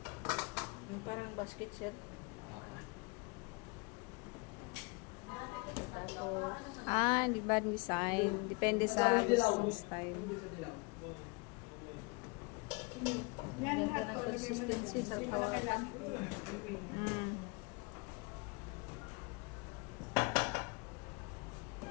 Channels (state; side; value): quieter; right; 28.8 dB